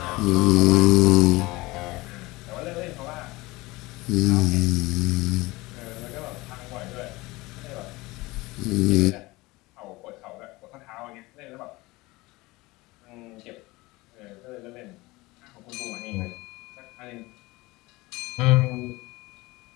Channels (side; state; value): right; quieter; 21.5 dB